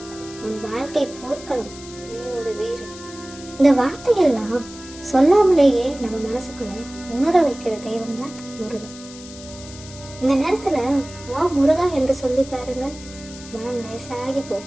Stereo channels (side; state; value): left; noise; hiss, 17 dB below the sound